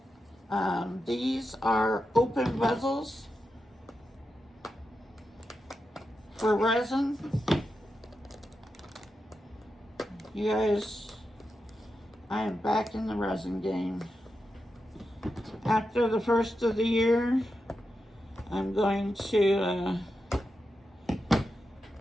these are open bezels for resin. You guys, I am back in the resin game. After the first of the year, I'm going to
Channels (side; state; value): both; normal; correlation 0.89